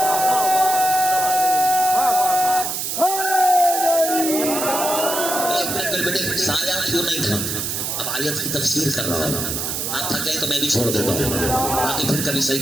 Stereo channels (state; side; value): noise; right; hiss, 2 dB below the sound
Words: سایہ کیوں نہیں تھا؟ اب آیت کی تفسیر کر رہا ہوں. آپ تھکے تو میں بھی چھوڑ دیتا ہوں، باقی پھر کبھی صحیح